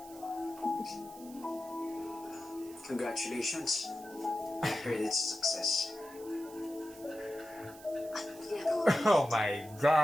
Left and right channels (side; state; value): right; noise; hiss, 20 dB below the sound